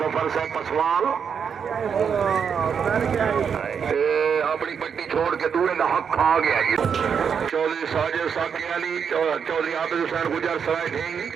सफर से पसवाल अपनी पट्टी छोड़ के दूर का हक खा गया ये चौधरी साजिद साकी अली चौधरी आबिद हुसैन गुजर सराय ढींग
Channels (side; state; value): left; quieter; 6.9 dB